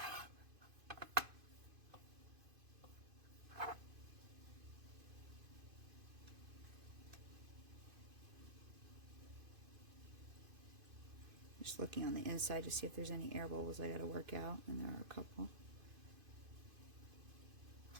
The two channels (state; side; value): late; left; 2.5 ms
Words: Just looking on the inside to see if there's any air bubbles I gotta work out, and there are a couple.